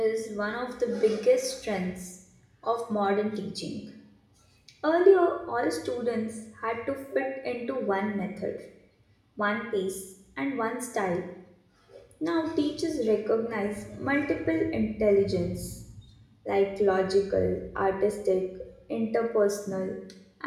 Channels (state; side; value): identical; both; correlation 1.00